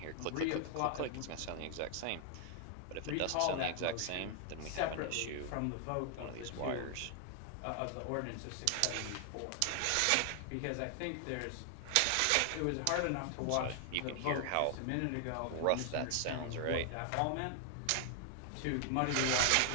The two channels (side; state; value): both; different; correlation 0.00